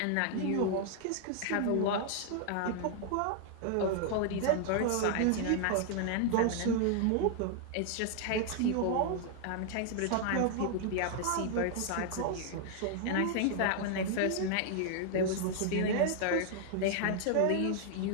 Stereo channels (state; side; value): different; both; correlation 0.00